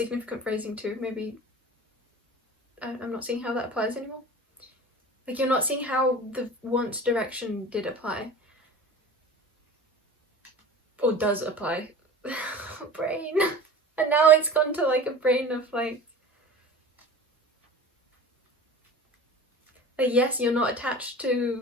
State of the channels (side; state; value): both; normal; correlation 0.38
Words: phrasing too. Maybe I'm not seeing how that applies anymore. Like you're not seeing how the once direction did apply. Or does apply. Brain. And now it's gone to like a brain of like yes, you're not attached to